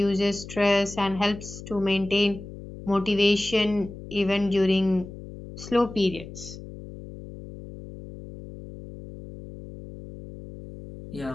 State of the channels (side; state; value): left; noise; hum, 14 dB below the sound